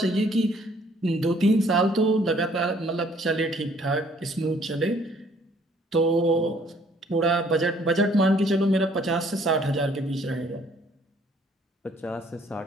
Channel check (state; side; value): normal; both; correlation 0.61